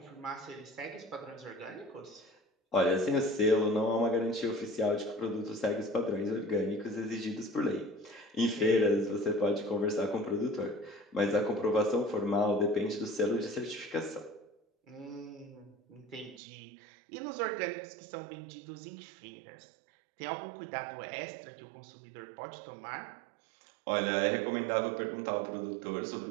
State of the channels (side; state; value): left; drops out; at 16.4 s